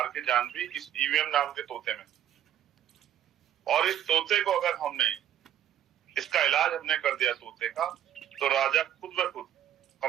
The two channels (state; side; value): quieter; left; 11.0 dB